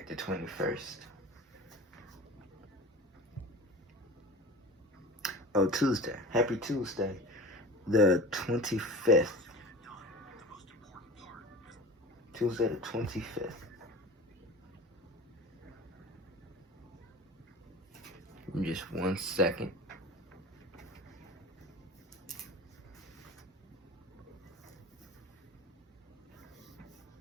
the 21st. Oh, Tuesday. Happy Tuesday, the 25th. Tuesday, the 25th. Just 1 second.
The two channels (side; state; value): both; normal; correlation 0.36